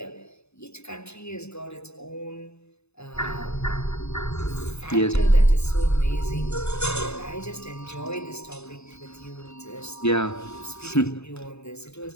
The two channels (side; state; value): right; late; 0.80 ms